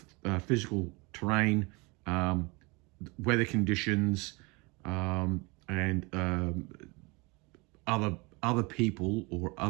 physical terrain, weather conditions, and other people or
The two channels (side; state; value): left; quieter; 27.3 dB